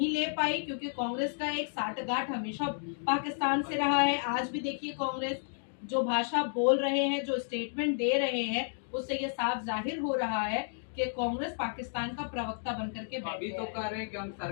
ले पाई, क्योंकि कांग्रेस का एक साठगांठ हमेशा पाकिस्तान से रहा है। आज भी देखिए कांग्रेस जो भाषा बोल रहे हैं, जो स्टेटमेंट दे रहे हैं, उससे ये साफ जाहिर हो रहा है कि कांग्रेस पाकिस्तान का प्रवक्ता बनकर के अभी तो कह रहे हैं कि हम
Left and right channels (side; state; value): right; silent; digital silence